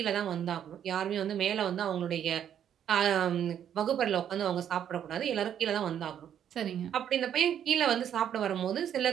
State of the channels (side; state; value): left; quieter; 9.5 dB